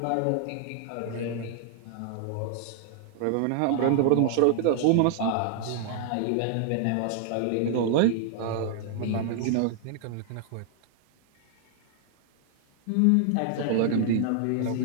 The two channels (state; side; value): different; both; correlation 0.00